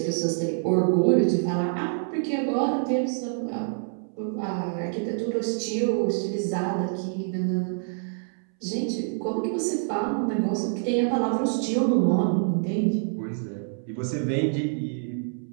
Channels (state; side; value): silent; left; 61 dB below the other